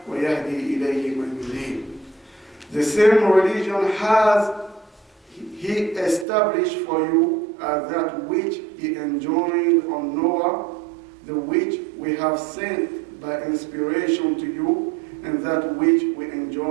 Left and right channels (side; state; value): left; drops out; at 6.2 s